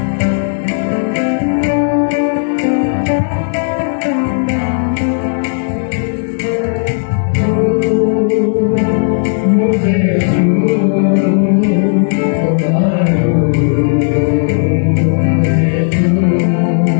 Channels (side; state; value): right; silent; digital silence